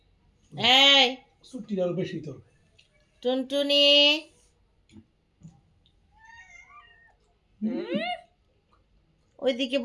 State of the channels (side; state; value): both; identical; correlation 1.00